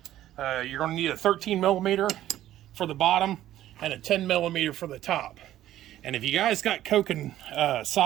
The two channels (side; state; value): left; quieter; 13.1 dB